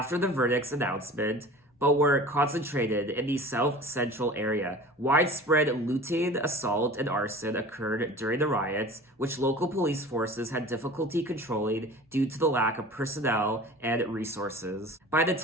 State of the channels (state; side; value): normal; both; correlation 0.40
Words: the verdict's announcement, but were concentrated in the South Central area. Widespread looting, assault, and arson occurred during the riots, which local police forces had difficulty controlling due to the lack of personnel and resources. By the